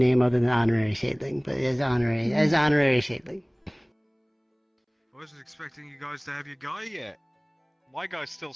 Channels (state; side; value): identical; both; correlation 1.00